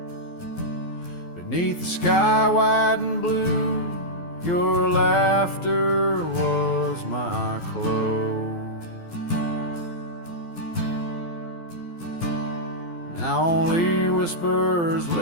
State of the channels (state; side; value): late; right; 12 ms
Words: Beneath the sky white and blue, your laughter was my clothes. Now only whispers